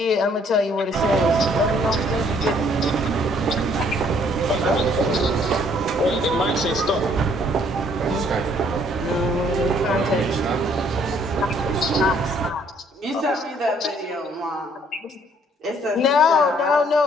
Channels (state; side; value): normal; both; correlation 0.63